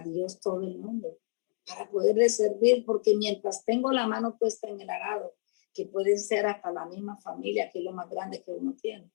todo el mundo, para poderle servir, porque mientras tengo la mano puesta en el arado, que pueden ser hasta la misma familia, que es lo más grande que uno tiene,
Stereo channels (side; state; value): right; silent; digital silence